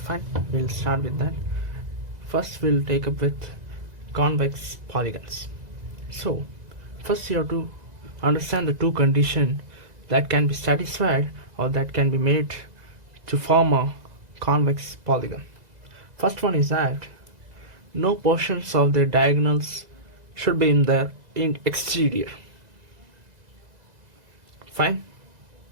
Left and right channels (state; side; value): late; left; 2.0 ms